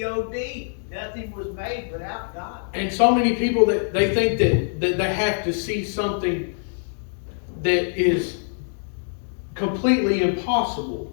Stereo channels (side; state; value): right; silent; digital silence